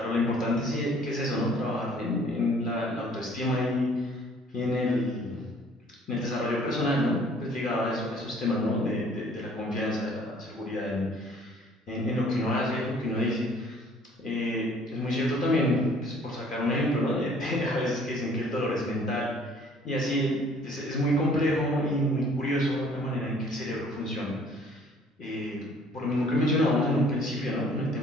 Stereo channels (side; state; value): both; normal; correlation 0.56